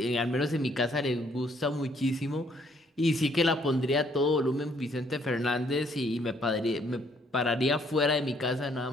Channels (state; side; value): normal; both; correlation 0.66